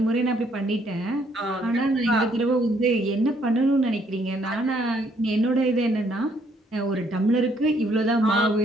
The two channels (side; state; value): both; normal; correlation 0.68